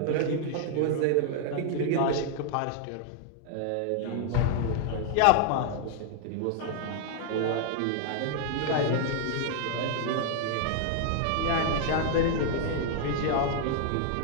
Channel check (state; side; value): different; both; correlation 0.00